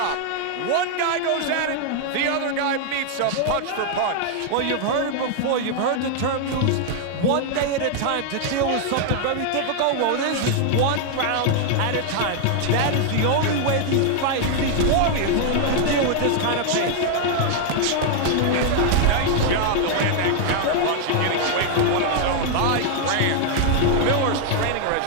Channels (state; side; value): different; both; correlation 0.00